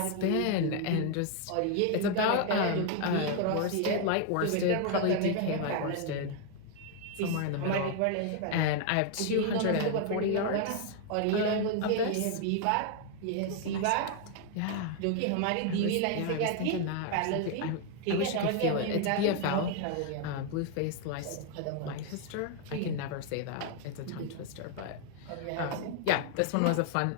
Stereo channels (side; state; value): both; different; correlation 0.00